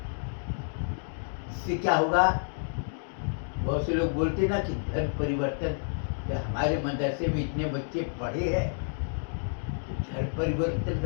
इससे क्या होगा, बहुत से लोग बोलते ना कि धर्म परिवर्तन, जब हमारे मदरसे में इतने बच्चे पढ़े हैं तो धर्म परिवर्तन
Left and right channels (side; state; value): right; silent; digital silence